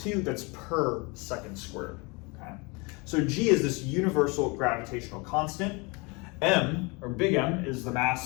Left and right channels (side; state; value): right; quieter; 28.4 dB